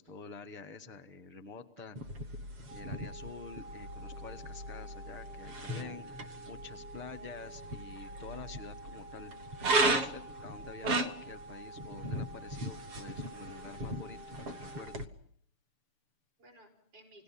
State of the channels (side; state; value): left; late; 6.9 ms